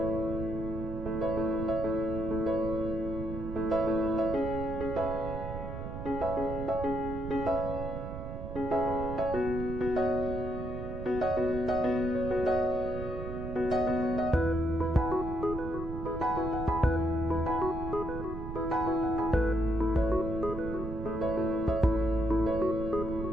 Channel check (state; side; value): noise; right; rumble, 7 dB below the sound